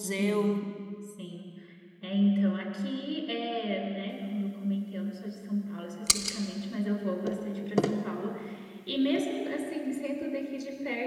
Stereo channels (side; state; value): both; identical; correlation 1.00